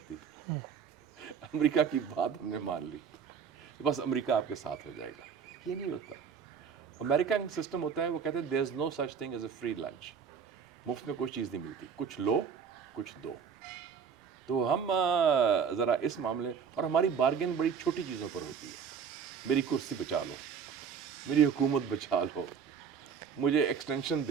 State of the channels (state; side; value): quieter; left; 6.8 dB